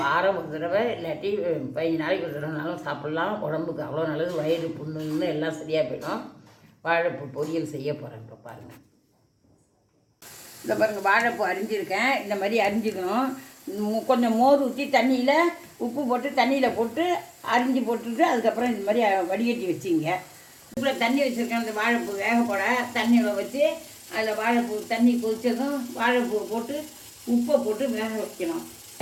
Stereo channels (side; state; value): both; identical; correlation 1.00